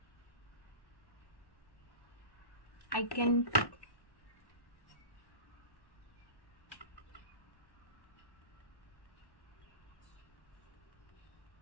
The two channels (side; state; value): right; late; 1.1 ms